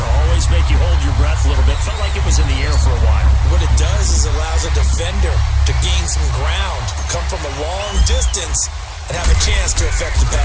always make you hold your breath a little bit. Felt like it was in the air for a while. What it does is allows a defender to gain some ground, come from a long distance, and have a chance to affect the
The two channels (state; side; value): identical; both; correlation 1.00